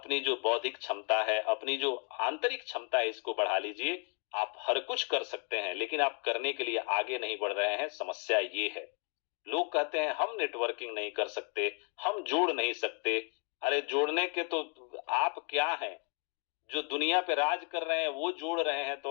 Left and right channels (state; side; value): quieter; right; 39.9 dB